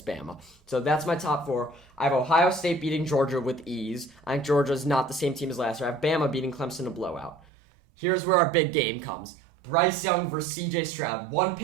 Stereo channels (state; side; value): drops out; left; at 7.4 s